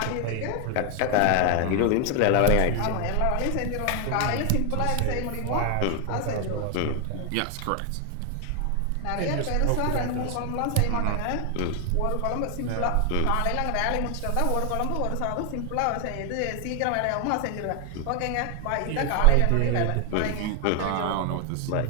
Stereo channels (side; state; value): both; different; correlation 0.00